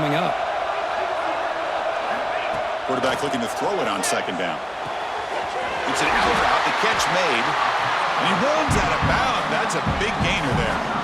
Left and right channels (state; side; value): identical; both; correlation 1.00